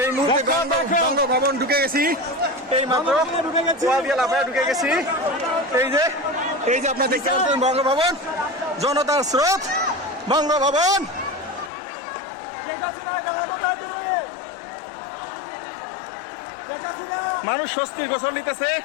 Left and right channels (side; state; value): right; drops out; at 11.7 s